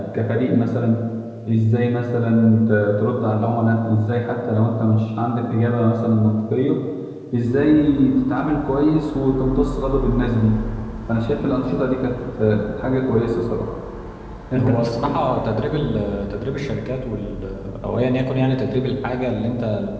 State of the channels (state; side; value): identical; both; correlation 1.00